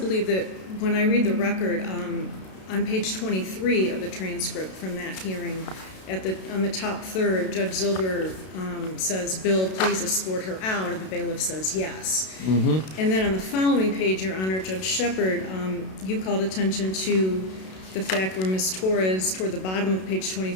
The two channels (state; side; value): late; right; 32 ms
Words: that when I read the record, on page 23 of the transcript from that hearing, on the top third, Judge Zilber says, "Bill, please escort her out," and the bailiff says yes. Mm-hmm. And then on the following page, Your Honor, Judge Shepard, you called attention to the fact where Ms. Torres, toward the bottom of page